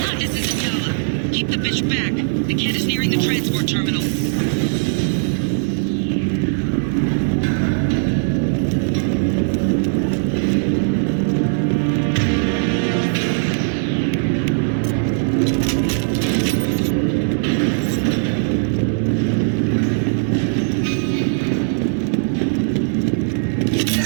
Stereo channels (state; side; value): silent; left; 66 dB below the other